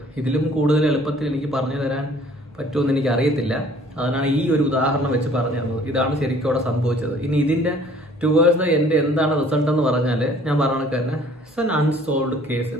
ഇതിലും കൂടുതൽ എളുപ്പത്തിൽ എനിക്ക് പറഞ്ഞു തരാൻ പറ്റുമെന്ന് എനിക്ക് അറിയത്തില്ല. അതിനാണ് ഈ ഒരു ഉദാഹരണം വെച്ച് പറഞ്ഞു തന്നത്. ഇതാണ് ശരിക്കും അവിടെ സംഭവിച്ചത്. ഇനി ഇതിൻ്റെ ടുവേഴ്സ് ദ എൻഡ് എന്താണ് റിസൾട്ട് എന്ന് പറഞ്ഞാൽ ഞാൻ പറഞ്ഞ തന്നെ ഇറ്റ്സ് ആൻ അൺസോൾവ്ഡ് കേസ്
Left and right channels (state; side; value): normal; both; correlation 0.55